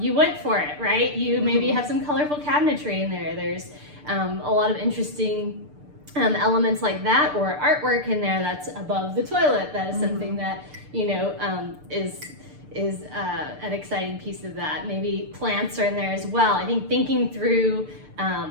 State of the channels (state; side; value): late; left; 6.7 ms